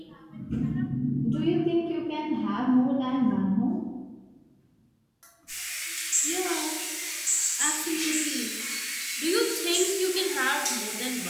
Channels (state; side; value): identical; both; correlation 1.00